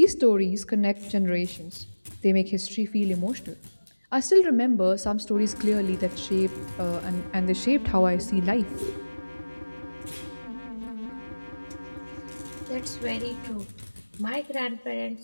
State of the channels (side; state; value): both; inverted; correlation -1.00